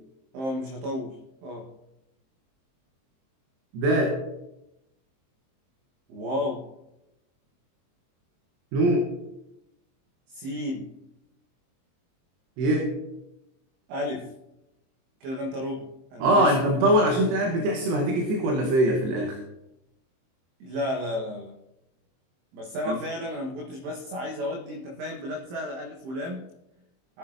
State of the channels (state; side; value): late; left; 23 ms